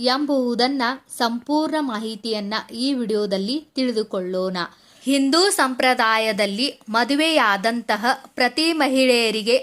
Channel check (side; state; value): both; identical; correlation 1.00